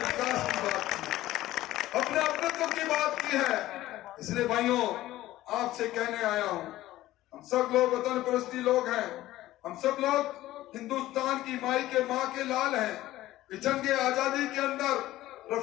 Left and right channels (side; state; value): right; quieter; 15.6 dB